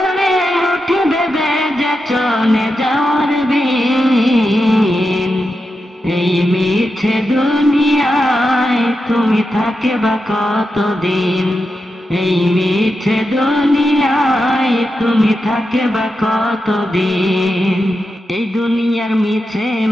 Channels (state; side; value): normal; both; correlation 0.88